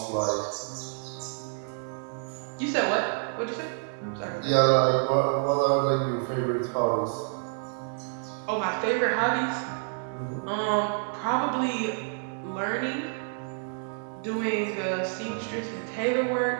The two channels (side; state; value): left; silent; 59 dB below the other